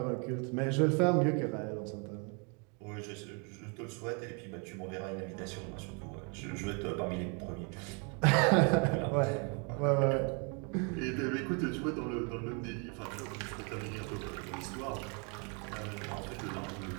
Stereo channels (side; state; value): left; quieter; 35.5 dB